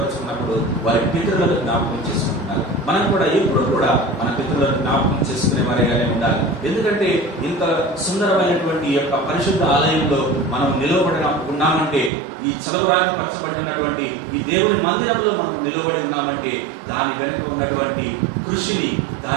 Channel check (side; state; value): left; drops out; at 12.1 s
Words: వారి పితరులను జ్ఞాపకం చేసుకుంటున్నారు. మనం కూడా ఎప్పుడు కూడా మన పితరులను జ్ఞాపకం చేసుకునే వారిగానే ఉండాలి. ఎందుకంటే ఇంత సుందరమైనటువంటి యొక్క పరిశుద్ధ ఆలయంలో మనం నిలవబడిన ఉన్నామంటే, ఈ చలవరాగి పరచబడి ఉన్నటువంటి ఈ దేవుని మందిరంలో మనం నిలబడి ఉన్నామంటే దాని వెనుక ఉన్నటువంటి కృషిని,